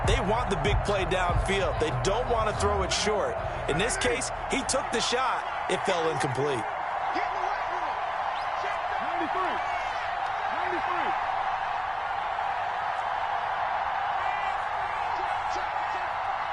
they want the big play downfield. They don't want to throw it short. In this case, he took the shot. It fell incomplete.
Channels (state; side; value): identical; both; correlation 1.00